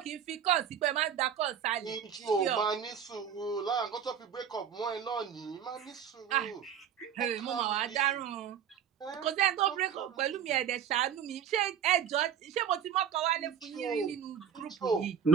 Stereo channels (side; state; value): left; quieter; 8.4 dB